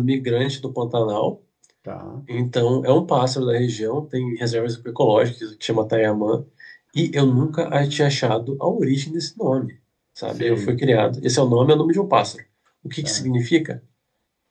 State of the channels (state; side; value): identical; both; correlation 1.00